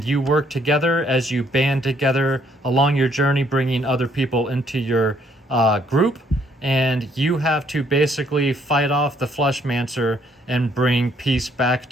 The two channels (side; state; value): both; normal; correlation 0.67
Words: you work together as you band together along your journey, bringing other people into your group. And you have to basically fight off the Fleshmancer and bring peace back